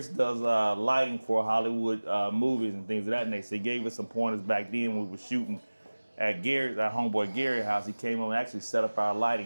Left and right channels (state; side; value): inverted; both; correlation -1.00